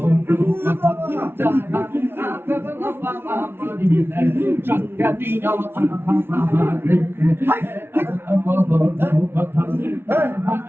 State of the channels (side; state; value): left; late; 0.11 ms